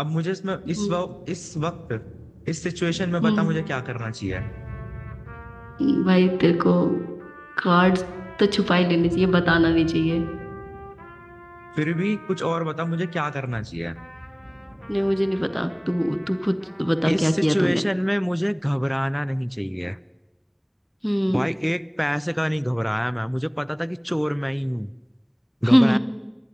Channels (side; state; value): both; identical; correlation 1.00